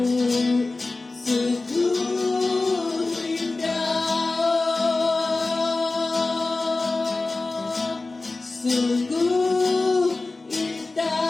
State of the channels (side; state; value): right; quieter; 3.4 dB